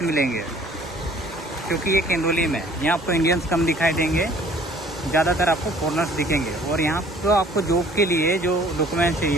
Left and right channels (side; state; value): both; normal; correlation 0.54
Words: मिलेंगे, क्योंकि ये केंदोली में यहाँ आपको इंडियंस कम दिखाई देंगे, ज़्यादातर आपको फॉरनर्स दिखेंगे। और यहाँ तो आपको जॉब के लिए जो डॉक्यूमेंट